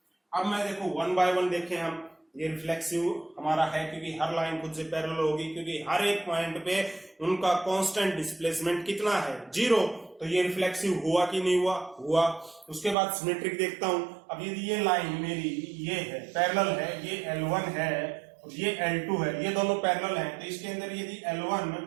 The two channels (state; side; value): drops out; left; at 13.0 s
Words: अब मैं देखो वन बाय वन देखें हम, ये रिफ्लेक्सिव हमारा है क्योंकि हर लाइन खुद से पैरेलल होगी, क्योंकि हर एक पॉइंट पे उनका कांस्टेंट डिस्प्लेसमेंट कितना है, 0। तो ये रिफ्लेक्सिव हुआ कि नहीं हुआ, हुआ। उसके बाद सिमेट्रिक देखता हूं। अब यदि ये लाइन मेरी ये है पैरेलल है, ये L1 है और ये L2 है, ये दोनों पैरेलल हैं, तो इसके अंदर यदि L1